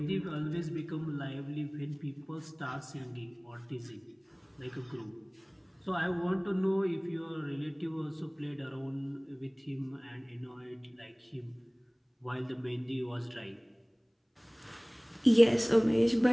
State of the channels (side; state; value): both; identical; correlation 1.00